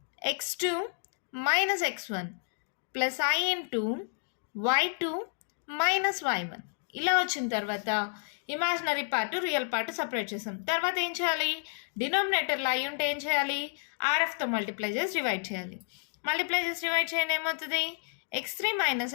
x2 minus x1 plus i into y2 minus y1. ఇలా వచ్చిన తర్వాత imaginary part real part separate చేసాం. తర్వాత ఏం చేయాలి, డినామినేటర్లో అయి ఉంటే ఏం చేయాలి, ఆర్ఎఫ్తో మల్టిప్లై చేసి డివైడ్ చేయాలి. మల్టిప్లై చేసి డివైడ్ చేయండి ఏమవుతుంది, x3 minus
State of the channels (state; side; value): silent; right; digital silence